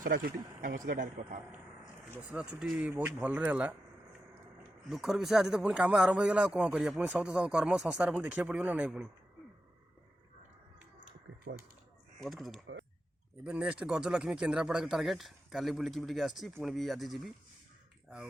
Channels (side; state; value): both; normal; correlation 0.89